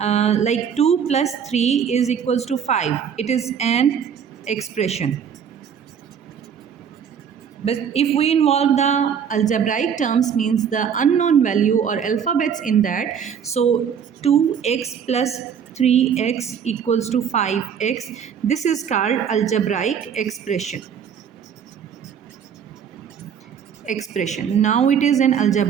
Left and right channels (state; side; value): quieter; left; 7.7 dB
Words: 2 plus 3 is equals to 5. It is an expression. But if we involve the algebraic terms, means the unknown value or alphabets in that, so 2x plus 3x equals to 5x, this is called algebraic expression. Now it is an